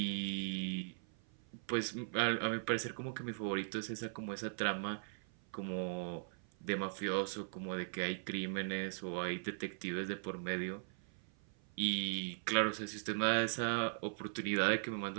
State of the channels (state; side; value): silent; left; 51 dB below the other